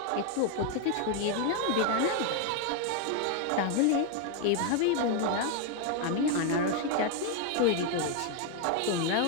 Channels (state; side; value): different; both; correlation 0.01